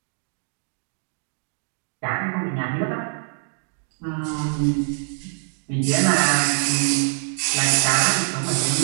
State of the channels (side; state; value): left; silent; 60 dB below the other